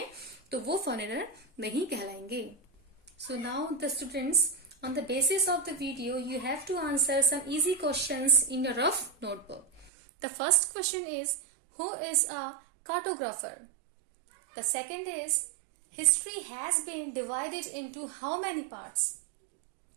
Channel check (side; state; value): left; drops out; at 9.9 s